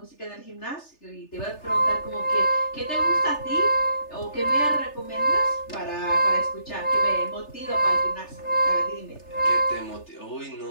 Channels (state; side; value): late; right; 3.3 ms